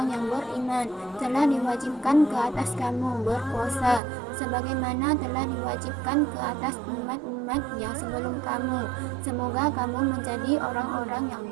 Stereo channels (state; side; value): drops out; left; at 4.0 s